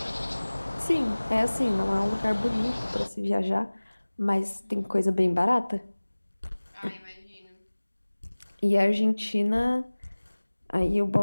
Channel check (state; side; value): inverted; both; correlation -1.00